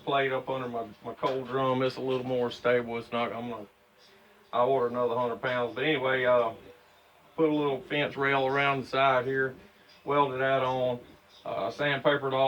plate up under my coal drum. It's a little more stable. It's not, I ordered another 100 pounds. But anyway, put a little fence rail around the side here, welded that on, sandpapered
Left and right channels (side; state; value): both; identical; correlation 1.00